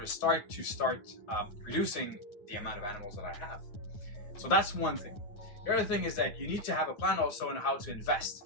start reducing the amount of animals that I have. So that's one thing. The other thing is that you need to have a plan also on how to invest.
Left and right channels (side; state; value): right; late; 9.7 ms